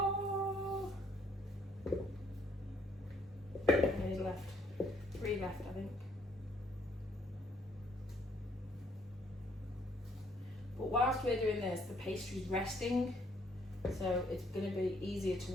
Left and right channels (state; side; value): normal; both; correlation 0.67